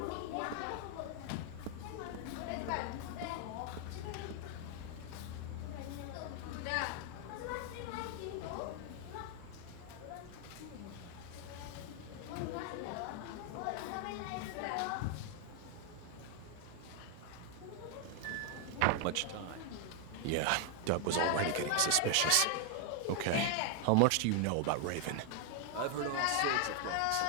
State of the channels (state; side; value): different; both; correlation 0.00